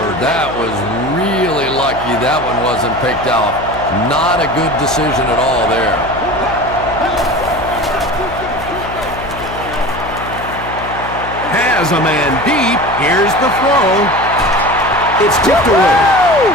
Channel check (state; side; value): noise; left; hum, 12 dB below the sound